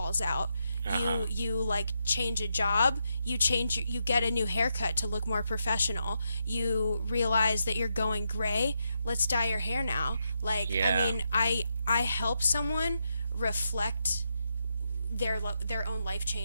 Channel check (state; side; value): inverted; both; correlation -0.82